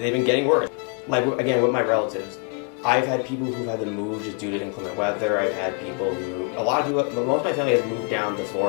been getting worse. Like, again, with my relatives, I've had people who've had to move just due to inclement weather. I've had people who, most of my family has moved down to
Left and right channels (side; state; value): right; quieter; 35.4 dB